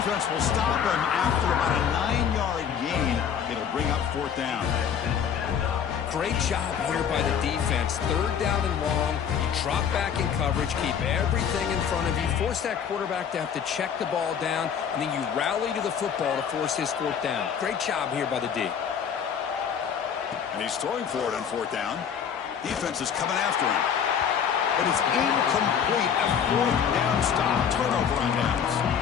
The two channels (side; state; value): right; quieter; 7.9 dB